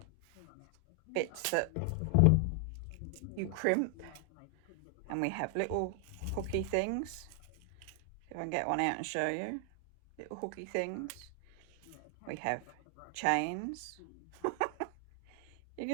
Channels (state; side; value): different; both; correlation 0.00